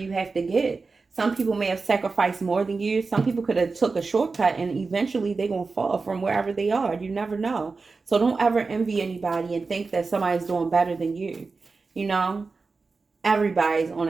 have to get? Some people may have sacrificed more than you. Some people could have took a shortcut and eventually they're going to fall from wherever they are. You never know. So don't ever envy anybody and think that somebody's doing better than you. You know, everybody's on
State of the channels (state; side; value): quieter; left; 4.2 dB